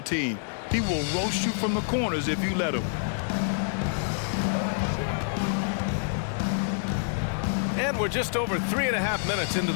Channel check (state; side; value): silent; right; 60 dB below the other